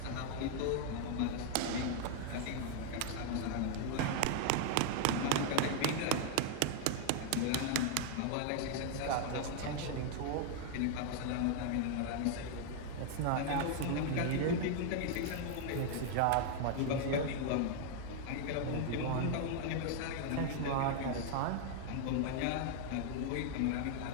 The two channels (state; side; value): different; both; correlation 0.00